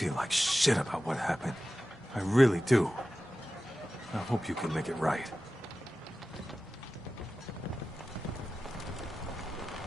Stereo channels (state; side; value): normal; both; correlation 0.94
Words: like shit about what happened. I really do. I hope you can make it right.